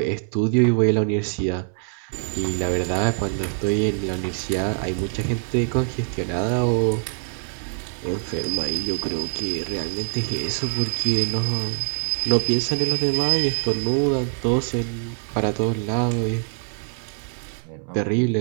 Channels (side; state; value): left; silent; 63 dB below the other